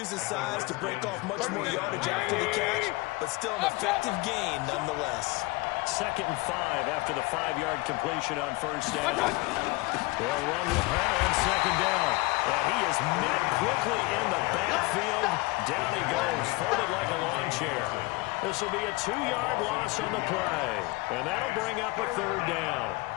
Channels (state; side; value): quieter; right; 23.5 dB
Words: his size to break off much more yardage after the catch, but still an effective gain nonetheless. 2nd and 5 after the 5-yard completion on first down. They'll run with Hunt on second down. And he is met quickly in the backfield. Down he goes, folded like a lawn chair. This will be a 2-yard loss on the play, and that'll bring up a 3rd down.